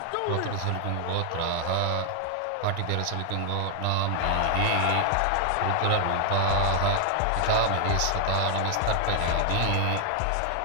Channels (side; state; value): both; different; correlation 0.00